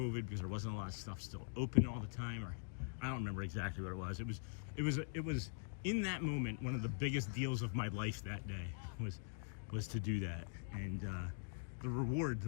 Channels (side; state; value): right; silent; digital silence